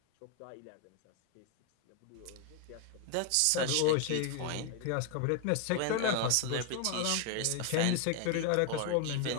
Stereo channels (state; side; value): different; both; correlation 0.01